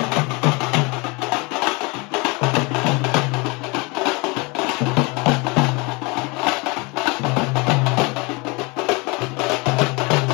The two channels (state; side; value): quieter; right; 27.9 dB